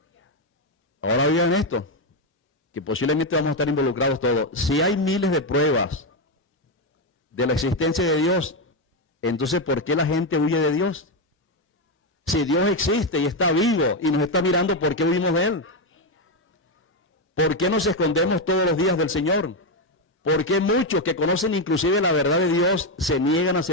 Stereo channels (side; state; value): both; normal; correlation 0.07